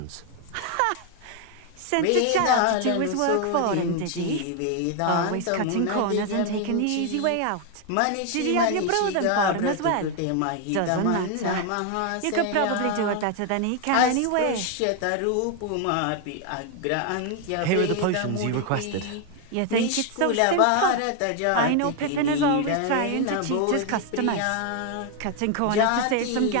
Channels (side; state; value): both; different; correlation 0.01